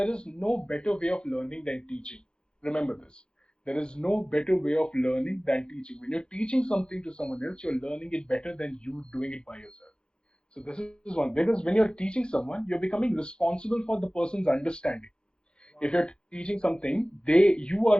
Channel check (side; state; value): right; late; 0.049 ms